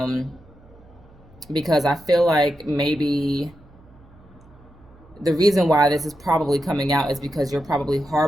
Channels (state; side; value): noise; right; hum, 26 dB below the sound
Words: because I feel like maybe the reason why this is probably coming out is because you're probably